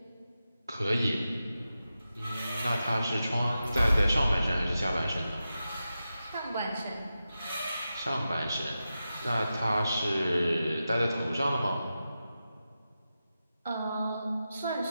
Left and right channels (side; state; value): both; inverted; correlation -0.91